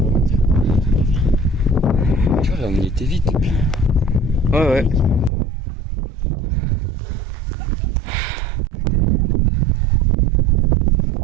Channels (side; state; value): left; drops out; at 5.3 s